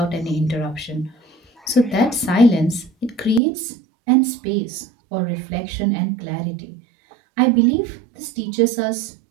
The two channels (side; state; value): left; drops out; at 3.4 s